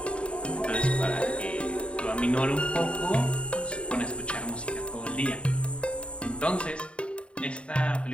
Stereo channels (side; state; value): right; late; 0.058 ms